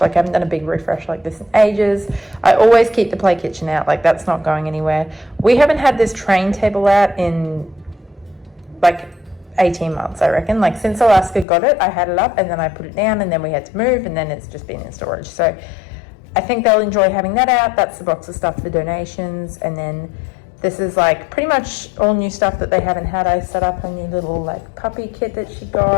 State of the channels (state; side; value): drops out; right; at 11.5 s